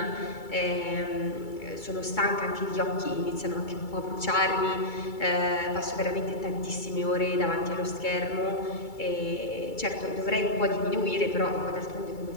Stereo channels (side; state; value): right; late; 2.3 ms